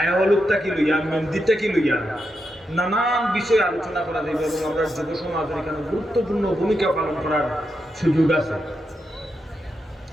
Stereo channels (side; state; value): both; normal; correlation 0.85